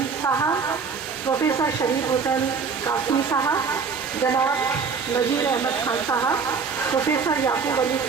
साहब, प्रोफेसर शरीफ हुसैन कासमी साहब, जनाब नजीर अहमद खान साहब, प्रोफेसर याकूब अली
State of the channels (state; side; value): quieter; left; 5.5 dB